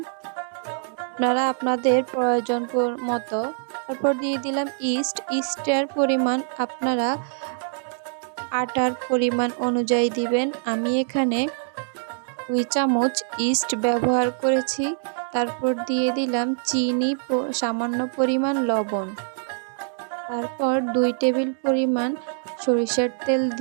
আপনারা আপনাদের প্রয়োজন মতো। তারপর দিয়ে দিলাম ইস্টের পরিমাণ আপনারা আটার পরিমাণ অনুযায়ী দিবেন। আমি এখানে 2 চামচ ইস্ট ব্যবহার করেছি। তারপর দিয়ে দিলাম চিনি, সামান্য পরিমাণ লবণ। তারপর 2 টেবিল পরিমাণ সরিষার তেল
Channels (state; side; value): silent; left; digital silence